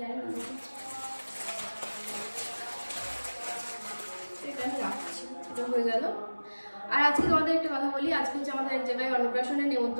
না। এটা আমি রাখছি, এটা হয়ে গেল। আর আজকে তোমাদের একটা কথা বলি, আজকে হচ্ছে আমাদের এক জায়গায় অন্নপ্রাশনের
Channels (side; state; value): both; inverted; correlation -1.00